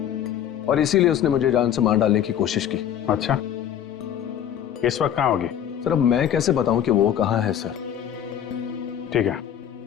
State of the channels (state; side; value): quieter; right; 9.9 dB